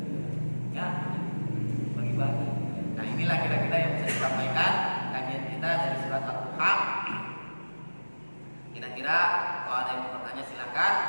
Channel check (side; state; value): both; inverted; correlation -1.00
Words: Ya, bagi-bagi. Nah, inilah kira-kira yang bisa disampaikan kajian kita dari surat ad-duha. Kira-kira kalau ada yang mau bertanya silakan.